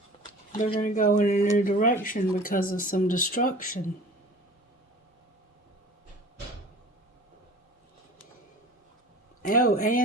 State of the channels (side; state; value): both; normal; correlation 0.42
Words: They're going to go in a new direction because of some destruction. Oh,